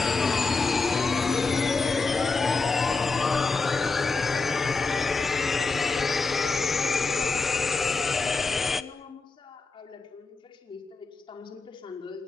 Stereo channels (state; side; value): quieter; right; 4.1 dB